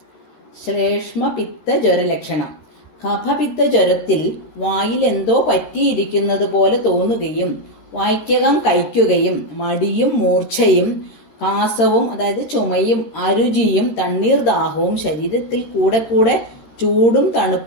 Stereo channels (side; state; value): right; late; 13 ms